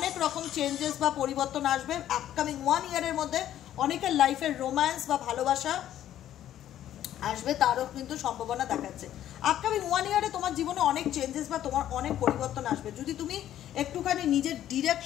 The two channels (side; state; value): right; quieter; 11.8 dB